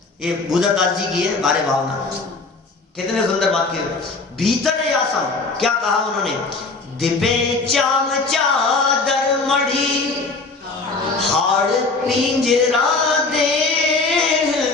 ये बुद्धदास जी की है बारे भावना, कितने सुंदर बात की। भीतर या सम, क्या कहा उन्होंने? दिपे चाम चादर मढ़ी हाड़ पिंजरा दे,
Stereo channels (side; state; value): right; quieter; 3.8 dB